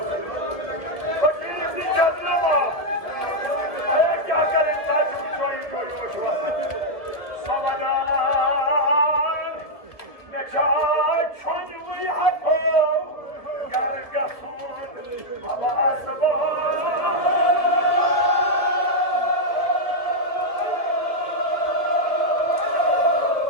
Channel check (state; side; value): late; right; 1.7 ms